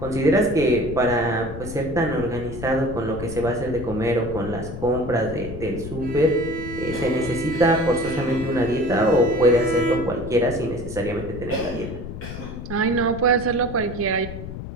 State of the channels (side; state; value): left; noise; rumble, 10 dB below the sound